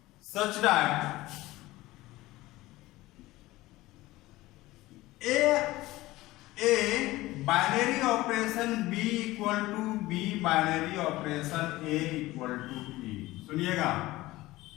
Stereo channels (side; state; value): right; quieter; 18.4 dB